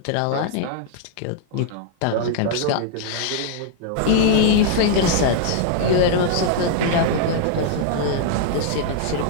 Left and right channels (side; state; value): both; different; correlation -0.01